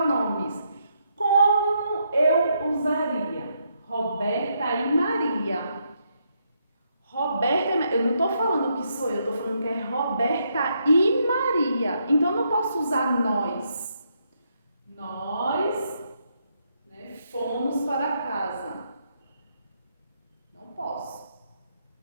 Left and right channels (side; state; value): both; inverted; correlation -0.77